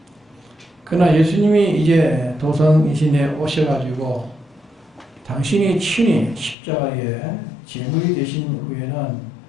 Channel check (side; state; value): right; drops out; at 6.6 s